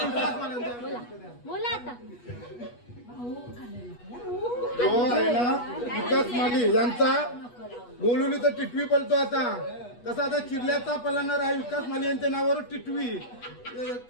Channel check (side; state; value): right; late; 8.3 ms